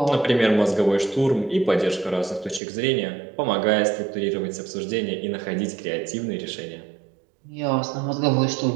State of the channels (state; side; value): drops out; left; at 2.6 s